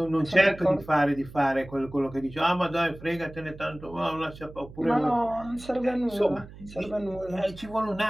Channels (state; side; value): noise; right; hum, 17 dB below the sound